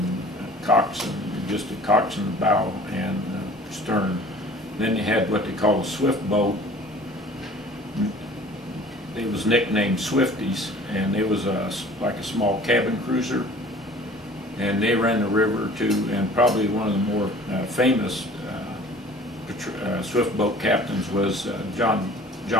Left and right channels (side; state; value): both; normal; correlation 0.47